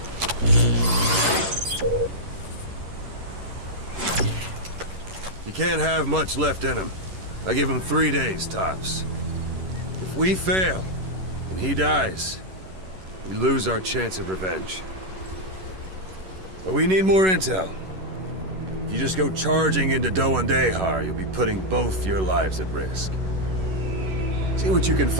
You can't have much left in him. I give him 3 days, tops. If we fail, and he dies, we lose our chance of revenge. But we need more intel. If you just go charging into DEJA, you'll be putting both your lives at risk. See what you can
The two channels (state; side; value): late; left; 11 ms